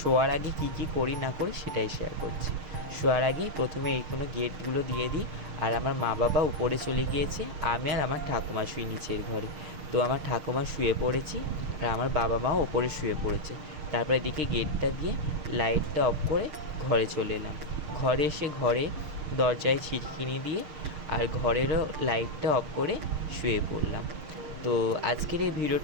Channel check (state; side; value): late; left; 6.5 ms